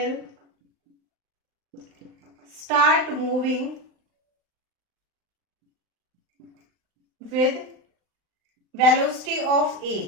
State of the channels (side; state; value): left; late; 39 ms